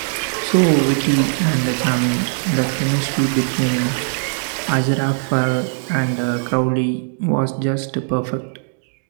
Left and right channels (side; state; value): left; silent; digital silence